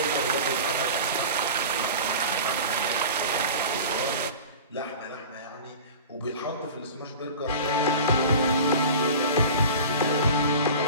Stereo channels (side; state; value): both; inverted; correlation -0.36